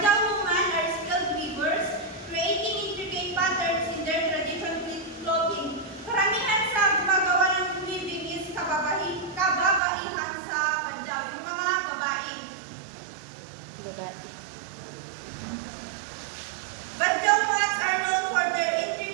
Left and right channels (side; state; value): left; drops out; at 9.8 s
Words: women are skilled weavers, creating intricate patterns in their traditional clothing. Karamihan sa gumagawa ng weaving is kababaihan sa Badyaw, yung mga babae. Badyaw mats are known for their